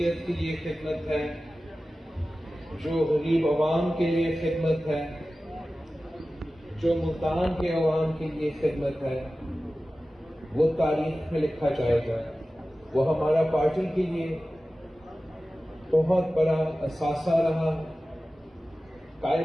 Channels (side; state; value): both; normal; correlation 0.95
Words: کے لیے خدمت ہے، جو غریب عوام کے لیے خدمت ہے، جو ملتان کے عوام کے لیے خدمت ہے، وہ تاریخ میں لکھا جائے گا. وہ ہمارا پارٹی کے لیے بہت بڑا اثاثہ رہا.